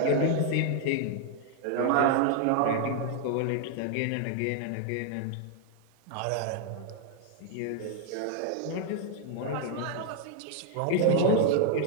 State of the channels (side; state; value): both; different; correlation 0.00